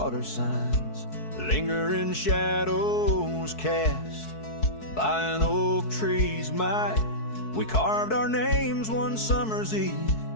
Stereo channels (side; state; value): right; late; 4.6 ms